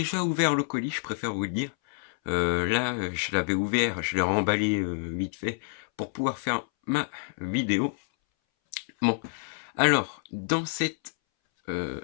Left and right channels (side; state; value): right; silent; 59 dB below the other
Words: ouvert le colis, je préfère vous le dire. Là, je l'avais ouvert, je l'ai remballé vite fait pour pouvoir faire ma vidéo. Bon, alors, dans